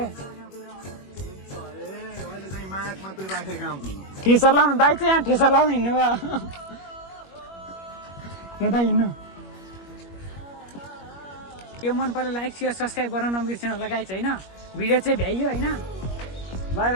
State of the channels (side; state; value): right; late; 21 ms